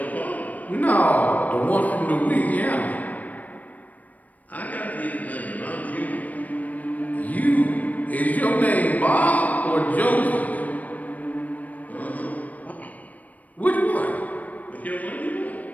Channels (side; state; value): right; late; 0.075 ms